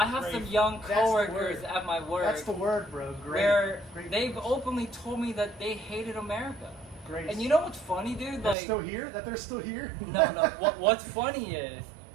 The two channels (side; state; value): left; drops out; at 8.6 s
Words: have some Grateful. young That's the coworkers word. at my work That's the word, bro. Great. where Great. they've openly told me that they hated America. Great. And you know what's funny, dude? they're Like still here? That they're still here? no. What's funny is